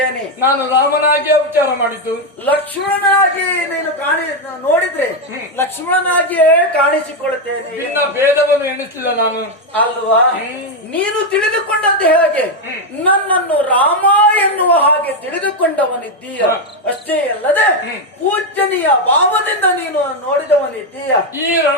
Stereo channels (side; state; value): both; normal; correlation 0.05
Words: ನಾನು ರಾಮನಾಗಿ ವಿಚಾರ ಮಾಡಿದ್ದು. ಲಕ್ಷ್ಮಣನಾಗಿ ನೀನು ನೋಡಿದ್ರೆ ಲಕ್ಷ್ಮಣನಾಗಿಯೇ ಕಾಣಿಸಿಕೊಳ್ಳುತ್ತೇನೆ. ನಿನ್ನ ಭೇದವನ್ನು ಎಣಿಸಲಿಲ್ಲ ನಾನು ಅಲ್ವಾ? ನೀನು ತಿಳಿದುಕೊಂಡದ್ದು ಹೇಗೆ? ನನ್ನನ್ನು ರಾಮ ಎನ್ನುವ ಹಾಗೆ ತಿಳಿದುಕೊಂಡವನಿದ್ದೀಯ. ಅಷ್ಟೇ ಅಲ್ಲದೆ ಪೂಜನೀಯ ಭಾವದಿಂದ ನೀನು ನೋಡಿದವನಿದ್ದೀಯ. ಈ